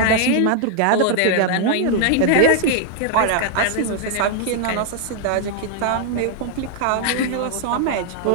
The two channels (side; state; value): both; different; correlation 0.00